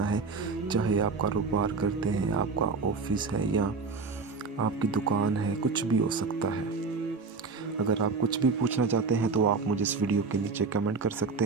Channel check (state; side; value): quieter; left; 4.5 dB